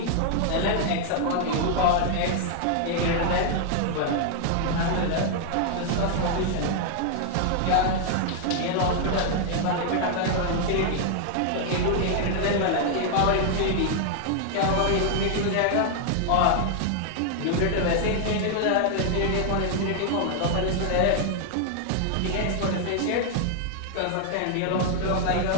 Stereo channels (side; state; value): both; different; correlation 0.00